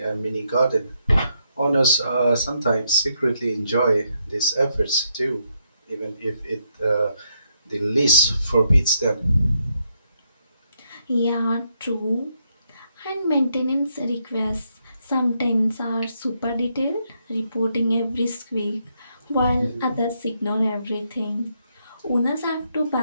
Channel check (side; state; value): both; inverted; correlation -0.77